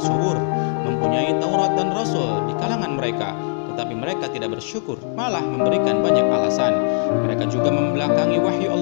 mempunyai Taurat dan Rasul di kalangan mereka. Tetapi mereka tidak bersyukur, malah memberikan banyak alasan. Mereka juga membelakangi wahyu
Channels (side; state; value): right; silent; digital silence